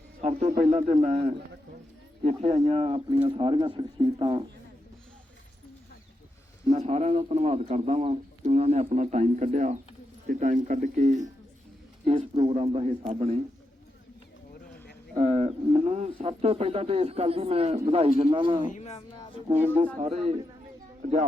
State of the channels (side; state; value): both; normal; correlation 0.86